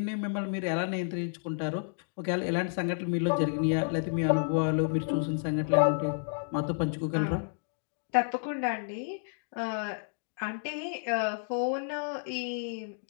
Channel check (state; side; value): silent; right; digital silence